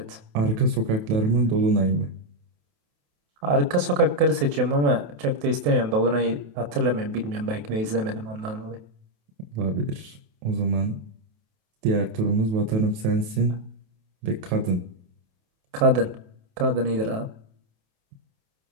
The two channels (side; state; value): left; late; 28 ms